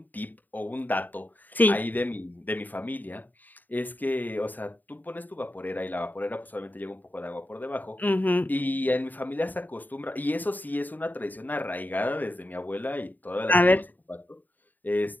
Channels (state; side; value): late; right; 0.086 ms